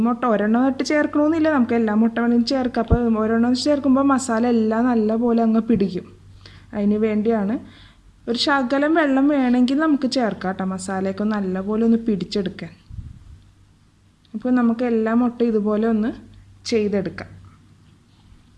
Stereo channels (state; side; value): identical; both; correlation 1.00